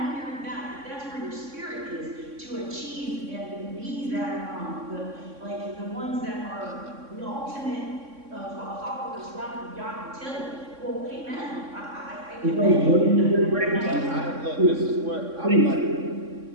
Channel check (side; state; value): left; late; 3.6 ms